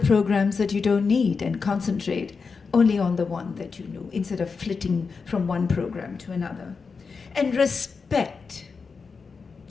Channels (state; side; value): quieter; right; 5.0 dB